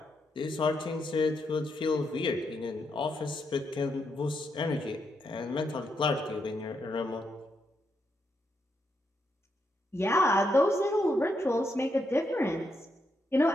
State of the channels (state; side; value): normal; both; correlation 0.80